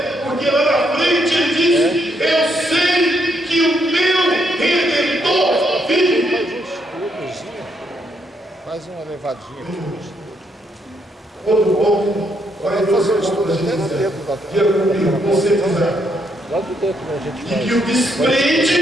porque lá na frente ele disse: eu sei que o meu Redentor vive. Faz uma levadinha aqui. Outro ponto, vai fazer o estudo da gente. Diga comigo, você quiser. Lá do dentro a gente faz. E que o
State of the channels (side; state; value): both; normal; correlation 0.75